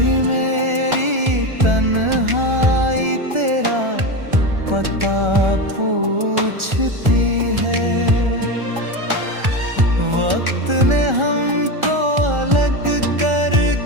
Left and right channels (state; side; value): late; left; 1.4 ms